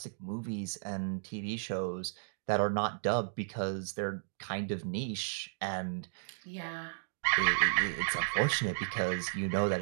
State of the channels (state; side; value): silent; left; digital silence